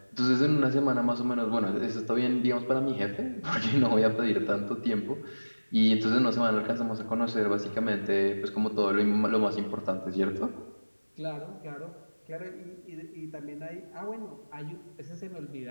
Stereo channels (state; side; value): inverted; both; correlation -1.00